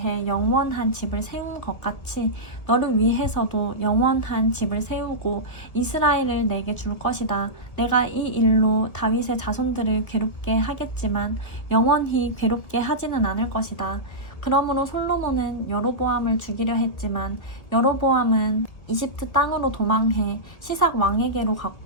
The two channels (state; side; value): late; right; 1.9 ms